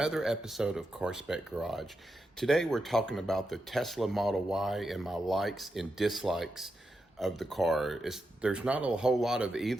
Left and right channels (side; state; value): both; normal; correlation 0.87